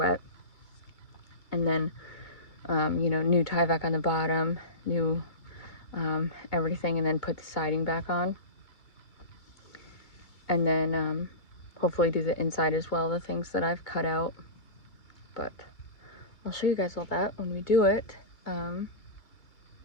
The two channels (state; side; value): late; right; 2.3 ms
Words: And then, you know, new tie back on the bottom, new everything, and then put the siding back on. And then hopefully do the inside as well, the things that I've cut out. But I'll show you guys all that when we do it.